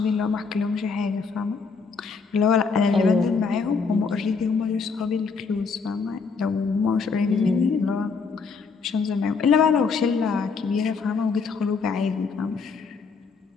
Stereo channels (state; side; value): quieter; right; 5.0 dB